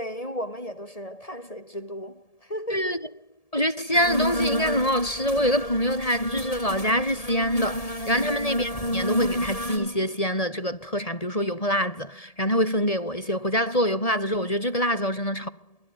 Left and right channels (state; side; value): late; right; 1.7 ms